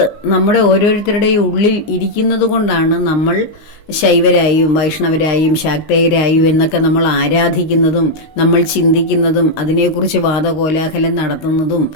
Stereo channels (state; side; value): late; right; 19 ms